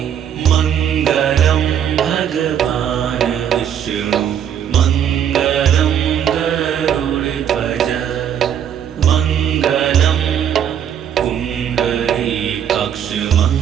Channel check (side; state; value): left; quieter; 9.1 dB